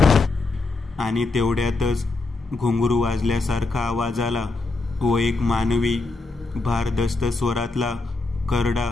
आणि तेवढ्यातच घुंगरू वाजल्यासारखा आवाज आला व एक मानवी भारदस्त स्वरातला करडा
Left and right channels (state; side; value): quieter; right; 3.4 dB